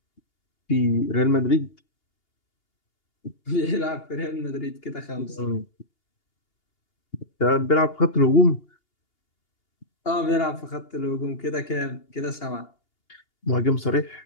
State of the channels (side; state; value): right; late; 2.8 ms